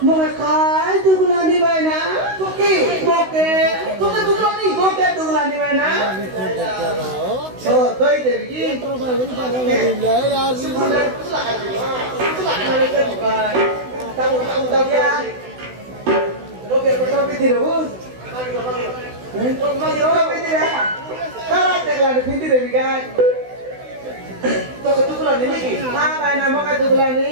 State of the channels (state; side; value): late; left; 16 ms